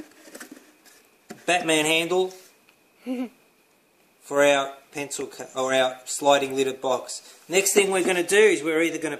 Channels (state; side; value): identical; both; correlation 1.00